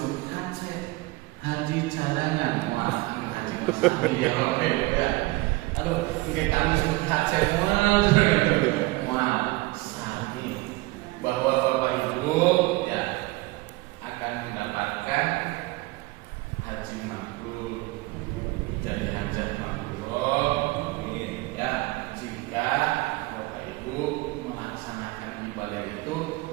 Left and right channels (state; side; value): quieter; left; 21.7 dB